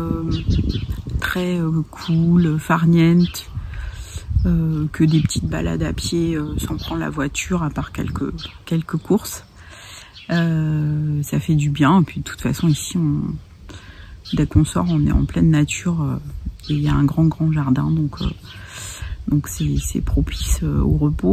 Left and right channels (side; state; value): both; identical; correlation 1.00